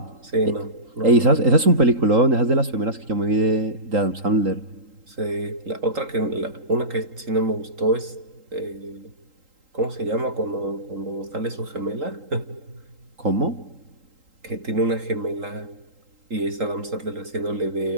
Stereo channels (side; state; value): left; late; 3.8 ms